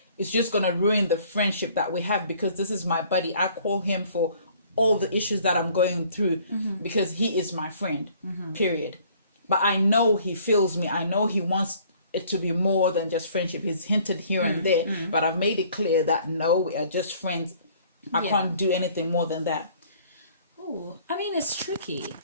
it's just going to ruin the friendship that we have, because this is my buddy. I call him for all the issues that I'm going through, because he is my friend, period. But I know he feels me. I know he wants it to be more than just friendship. He's hinted here and there, but I've made it clear that no, we are just friends. I can't do anything more than that. Oh, I mean, it's tricky,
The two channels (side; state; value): both; inverted; correlation -0.57